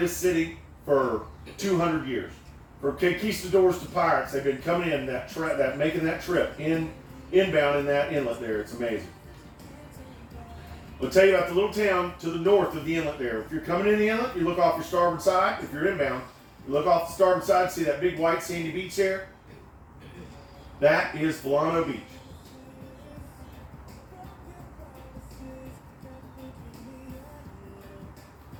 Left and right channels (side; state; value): both; identical; correlation 1.00